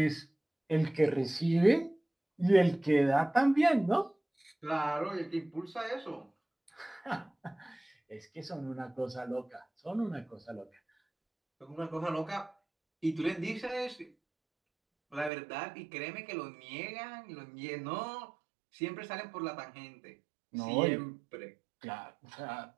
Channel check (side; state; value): left; drops out; at 15.3 s